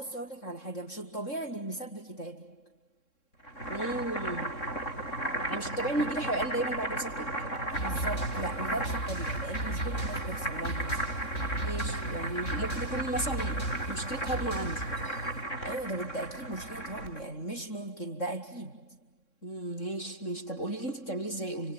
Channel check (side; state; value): right; late; 3.6 ms